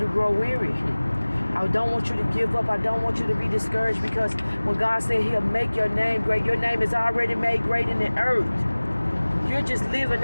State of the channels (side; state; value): both; inverted; correlation -1.00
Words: grow weary. I don't want you to give up. I don't want you to be discouraged, because when God said he'll make your name great, your name is already made great in the earth. You're just living